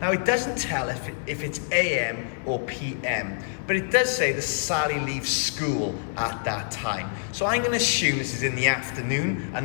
Now it doesn't tell if it's AM or PM, but it does say that Sally leaves school at that time. So I'm going to assume this is in the afternoon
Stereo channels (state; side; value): silent; right; digital silence